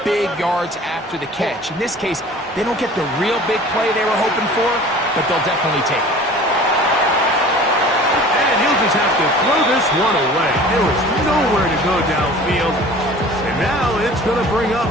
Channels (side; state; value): both; normal; correlation 0.44